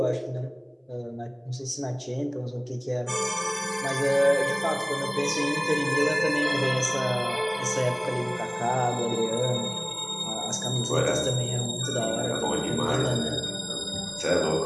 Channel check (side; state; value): both; identical; correlation 1.00